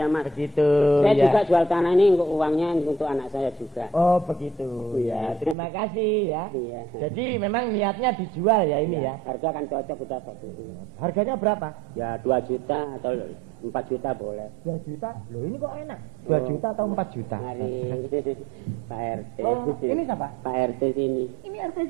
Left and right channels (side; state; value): left; drops out; at 5.6 s